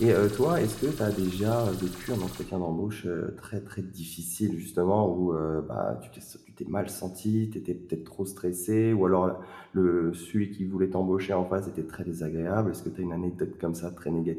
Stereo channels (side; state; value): both; identical; correlation 1.00